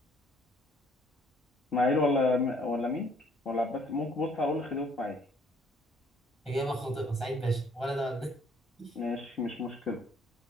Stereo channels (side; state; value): both; normal; correlation 0.62